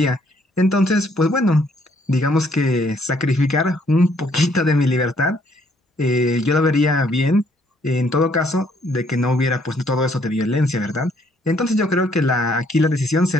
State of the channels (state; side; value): normal; both; correlation 0.66